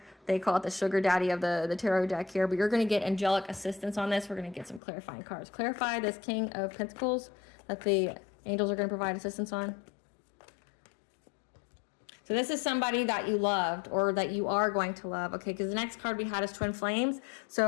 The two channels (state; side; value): drops out; right; at 4.8 s